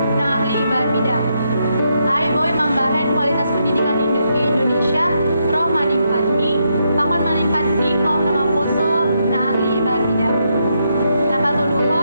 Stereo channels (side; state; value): both; inverted; correlation -0.79